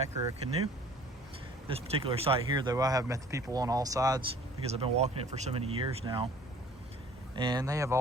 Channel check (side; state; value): both; normal; correlation 0.51